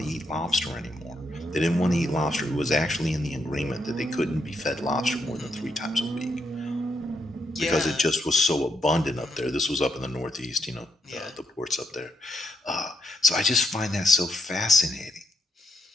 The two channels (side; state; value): both; normal; correlation 0.78